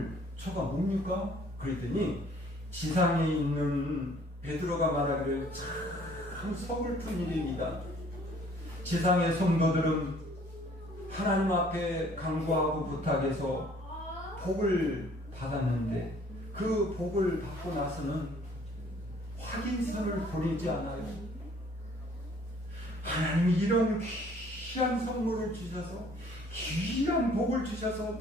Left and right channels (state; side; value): normal; both; correlation 0.57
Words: 뭡니까? 그랬더니 지상에 있는 베드로가 말하기를 참 서글픈 일입니다. 지상의 성도들은 하나님 앞에 간구하고 부탁해서 복을 받았는데 그 복을 받고 나서는 확인서를 보내지 않아요. 하나님이 이런 귀한 선물을 주셔서 귀한 복을 주셔서